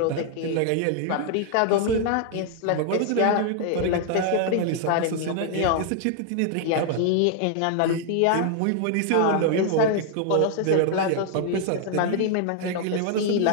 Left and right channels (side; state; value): both; different; correlation 0.00